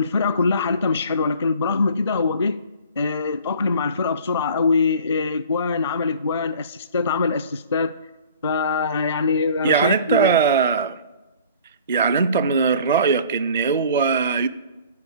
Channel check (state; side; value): inverted; both; correlation -0.48